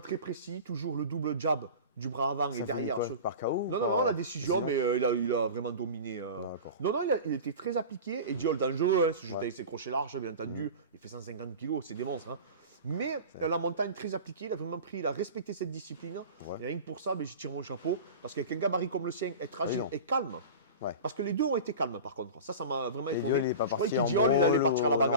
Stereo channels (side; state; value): both; inverted; correlation -0.33